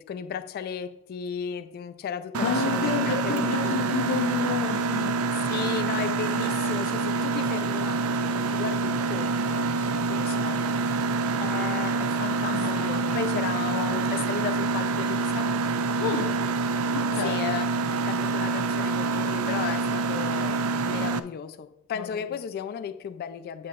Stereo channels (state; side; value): normal; both; correlation 0.07